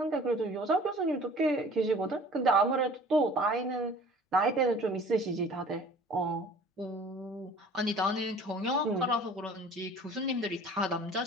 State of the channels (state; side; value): normal; both; correlation 0.47